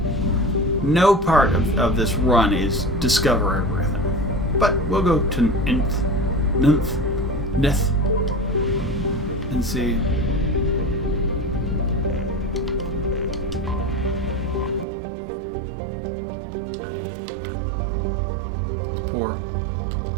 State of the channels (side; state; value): left; drops out; at 14.9 s